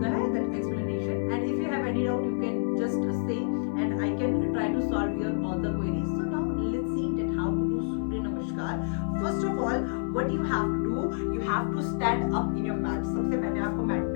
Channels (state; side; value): silent; right; 59 dB below the other